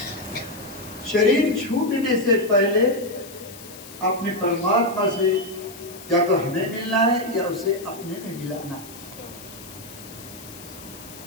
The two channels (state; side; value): noise; left; hiss, 17 dB below the sound